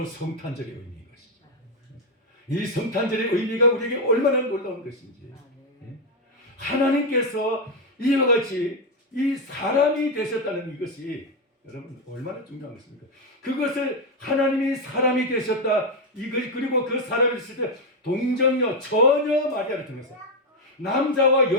성탄절의 의미인 것이죠. 이 성탄절의 의미가 우리에게 얼마나 놀라운 것인지 하나님께서 이와 같이 이 사람이 되셨다는 이것이 여러분 얼마나 중요한 것입니까? 그것을 하나님이 사람이 되셨다 그리고 그 사람이 되실 때 동정녀 처녀 마리아를 통해서 남자와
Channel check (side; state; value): both; normal; correlation 0.05